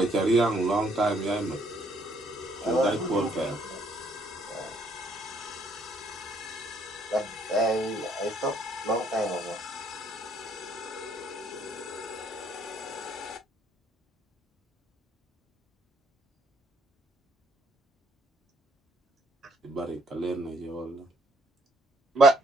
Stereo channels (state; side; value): normal; both; correlation 0.67